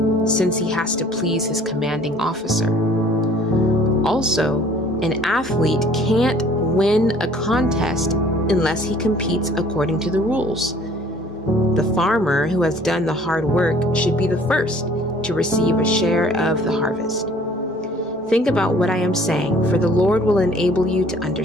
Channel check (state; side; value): normal; both; correlation 0.54